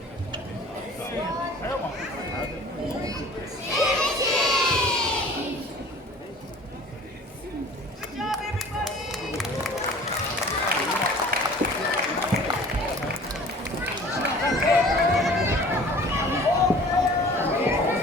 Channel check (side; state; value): both; normal; correlation 0.46